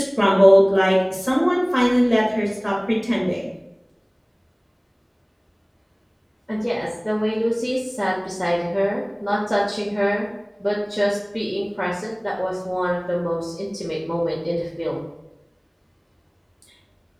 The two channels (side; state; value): both; identical; correlation 1.00